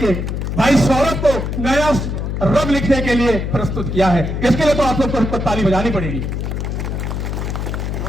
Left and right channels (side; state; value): left; noise; hum, 3 dB below the sound